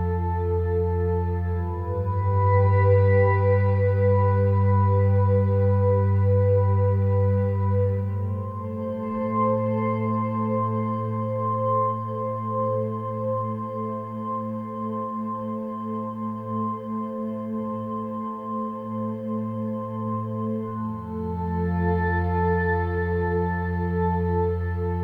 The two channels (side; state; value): both; identical; correlation 1.00